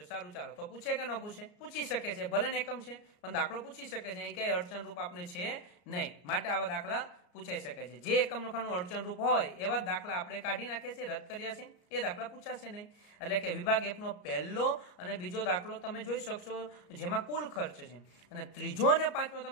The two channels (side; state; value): right; late; 34 ms